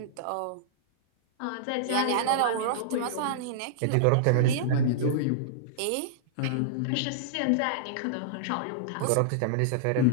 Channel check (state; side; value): different; both; correlation -0.02